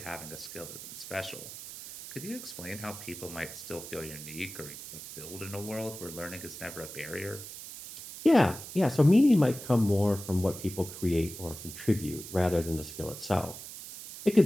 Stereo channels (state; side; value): noise; right; hiss, 12 dB below the sound